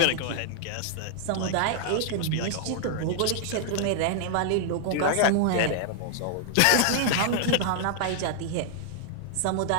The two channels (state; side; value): different; both; correlation 0.00